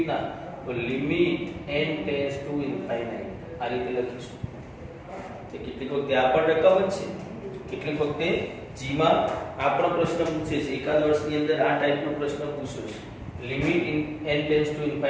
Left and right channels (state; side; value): identical; both; correlation 1.00